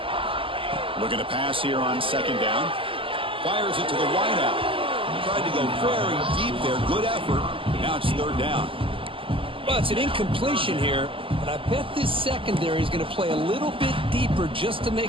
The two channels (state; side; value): late; left; 0.25 ms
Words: Looking to pass here on second down. Fires it to the wideout. Tried to go very deep there. Good effort. Now it's third down. Well, it's an incompletion here, but I bet this secondary is going to play a little bit deeper just to